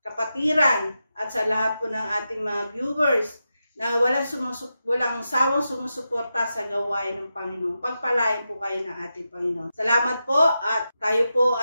kapatiran at sa lahat po ng ating mga viewers na walang sawang sumusuporta sa gawain ng Panginoon. Pagpalain po kayo ng ating Panginoon. Salamat po at tayo po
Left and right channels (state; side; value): inverted; both; correlation -0.89